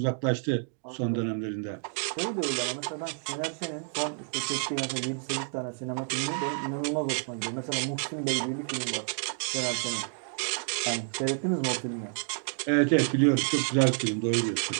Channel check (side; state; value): left; silent; 58 dB below the other